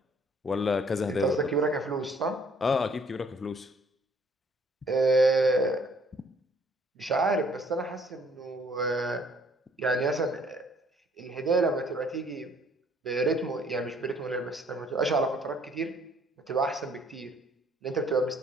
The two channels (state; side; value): normal; both; correlation 0.61